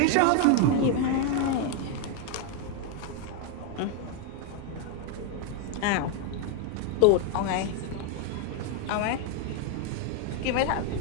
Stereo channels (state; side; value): different; both; correlation 0.01